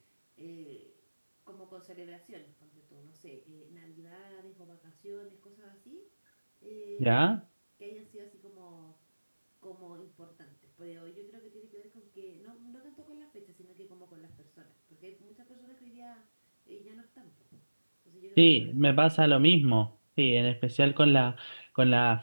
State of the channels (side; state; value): both; inverted; correlation -1.00